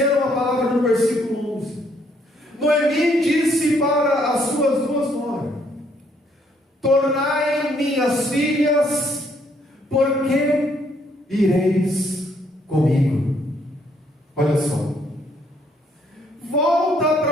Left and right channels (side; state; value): both; normal; correlation 0.68